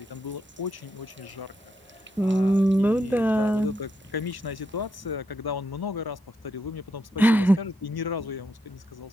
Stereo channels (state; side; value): normal; both; correlation 0.81